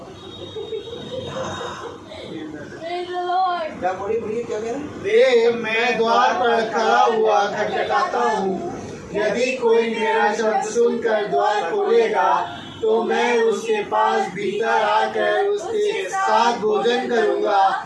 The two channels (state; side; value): identical; both; correlation 1.00